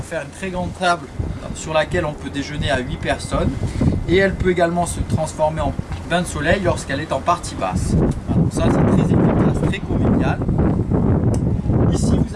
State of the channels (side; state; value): both; identical; correlation 1.00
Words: faire une très grande table sur laquelle on peut déjeuner à 8 personnes. Et elle peut également se transformer en bain de soleil lorsqu'elle est en partie basse. Alors ça, c'est très efficace, très convivial. Ici,